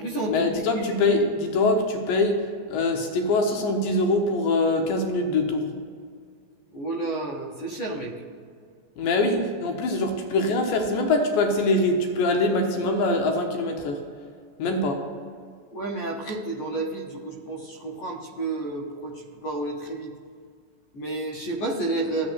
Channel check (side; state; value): right; late; 14 ms